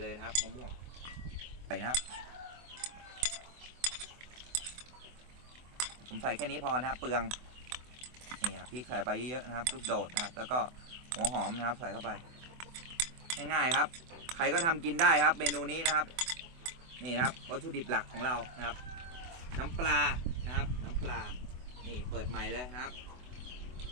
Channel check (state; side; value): late; left; 24 ms